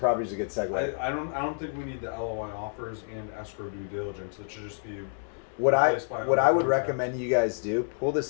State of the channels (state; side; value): silent; right; 59 dB below the other